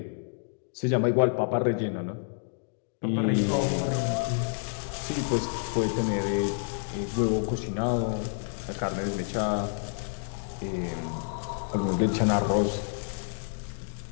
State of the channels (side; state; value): right; silent; digital silence